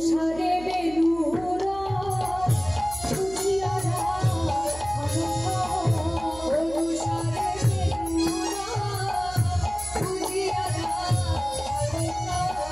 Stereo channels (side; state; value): right; noise; hum, 16 dB below the sound